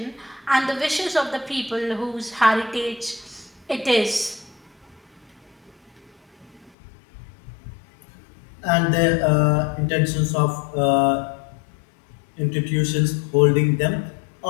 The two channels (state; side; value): drops out; right; at 6.7 s